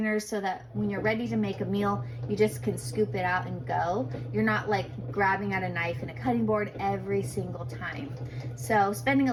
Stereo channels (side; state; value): both; identical; correlation 1.00